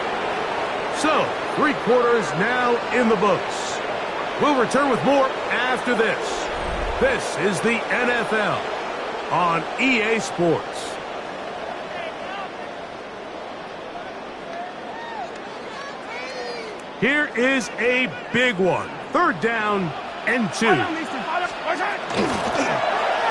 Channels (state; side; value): identical; both; correlation 1.00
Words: So, 3 quarters now in the books. We'll return with more after this. This is the NFL on EA Sports. Here is a big one. 3rd down and 2. They're